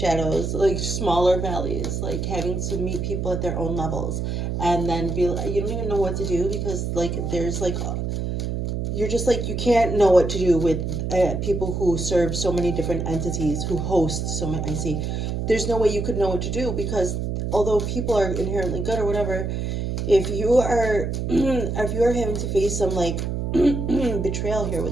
like smaller valleys, like having to meet people at their own levels. And then you don't even know what to do because, like, there's like, you're just like, you can't know what to do with people who serve so many different entities, who host so many. I see. There's no way you could know what to do because although people are inherently good or whatever, if you are having to face some like betrayal here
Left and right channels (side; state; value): right; noise; hum, 2 dB below the sound